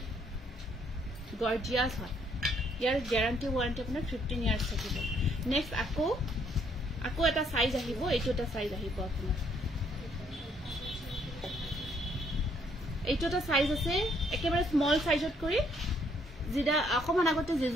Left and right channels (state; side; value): normal; both; correlation 0.68